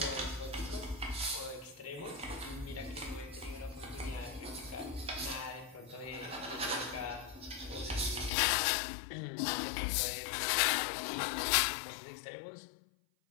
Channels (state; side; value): drops out; right; at 8.3 s